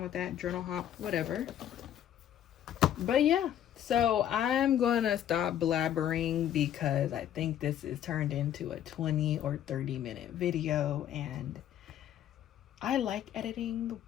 with that. Journal hop, whatever. But yeah, so I'm gonna stop blabbering because I think this is turned into a 20 or 30-minute video, and I like editing,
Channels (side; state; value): right; quieter; 10.7 dB